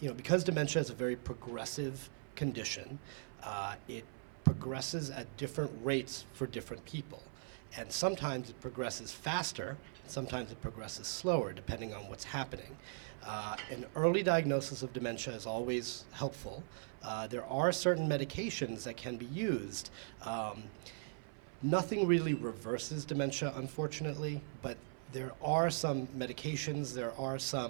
Because dementia is a very progressive condition, it progresses at different rates for different people. And sometimes it progresses faster, and sometimes it progresses slower, depending on what's happening. An early diagnosis of dementia is always helpful. There are certain medications that can be used. Nothing really reverses dementia, unfortunately, but there are some medications, there are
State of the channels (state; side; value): silent; left; 51 dB below the other